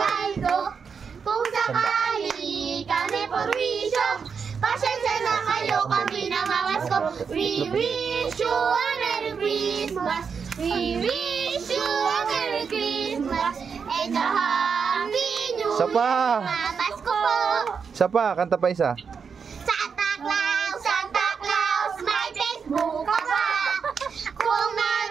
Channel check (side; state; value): left; quieter; 6.1 dB